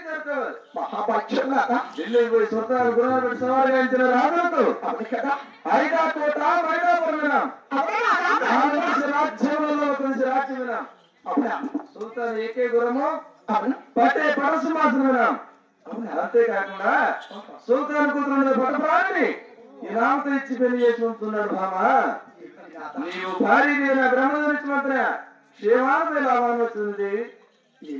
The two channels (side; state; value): both; identical; correlation 1.00